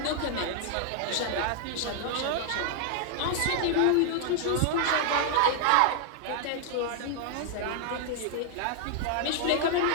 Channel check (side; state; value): both; different; correlation 0.00